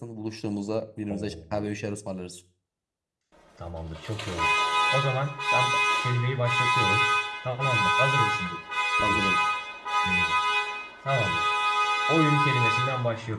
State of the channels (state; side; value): identical; both; correlation 1.00